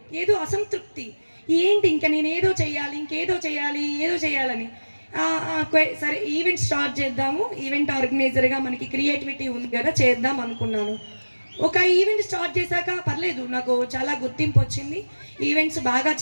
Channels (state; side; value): inverted; both; correlation -1.00